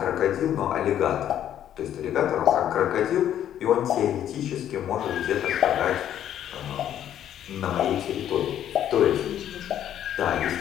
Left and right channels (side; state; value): right; quieter; 10.7 dB